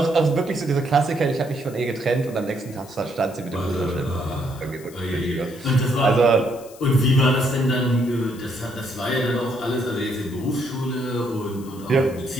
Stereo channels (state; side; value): noise; left; hiss, 21 dB below the sound